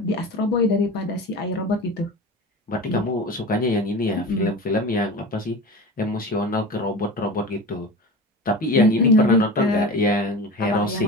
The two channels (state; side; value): normal; both; correlation 0.31